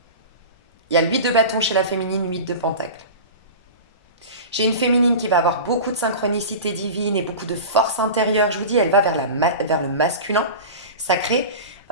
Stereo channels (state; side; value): inverted; both; correlation -0.32